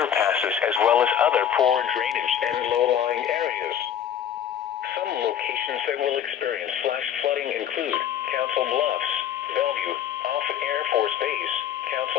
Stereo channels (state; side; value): quieter; right; 9.5 dB